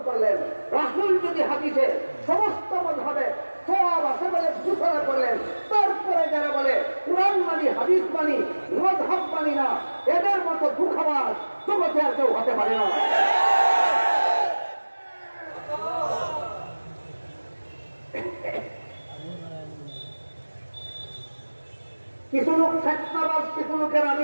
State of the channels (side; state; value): both; inverted; correlation -1.00